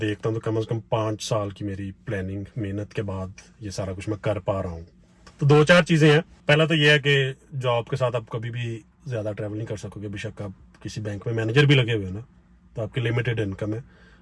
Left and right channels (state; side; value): identical; both; correlation 1.00